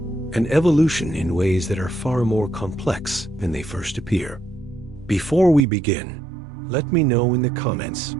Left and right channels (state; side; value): drops out; left; at 5.6 s